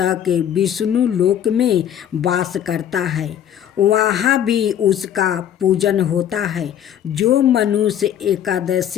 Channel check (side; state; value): right; quieter; 10.2 dB